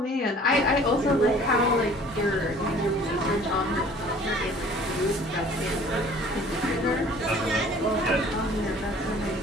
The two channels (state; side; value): normal; both; correlation 0.51